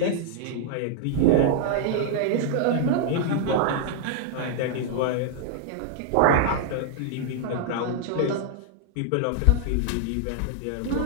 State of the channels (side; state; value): both; different; correlation -0.01